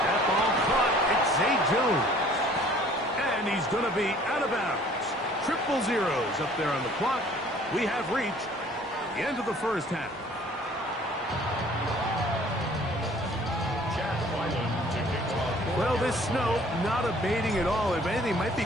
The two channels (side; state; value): both; normal; correlation 0.54